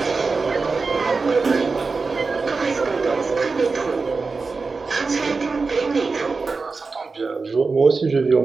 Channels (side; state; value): left; quieter; 4.3 dB